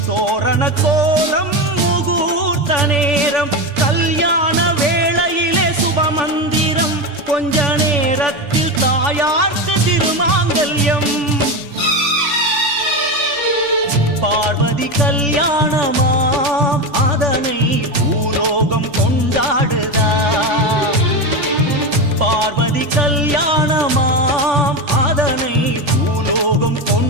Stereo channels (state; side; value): late; left; 3.5 ms